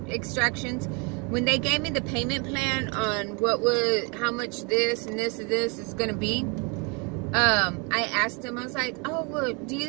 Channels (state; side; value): quieter; left; 32.3 dB